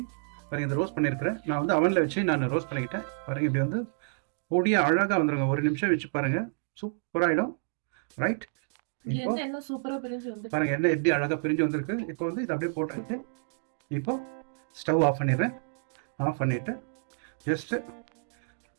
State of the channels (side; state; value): left; silent; digital silence